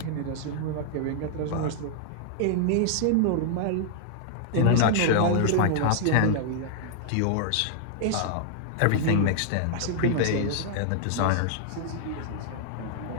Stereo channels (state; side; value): different; both; correlation -0.01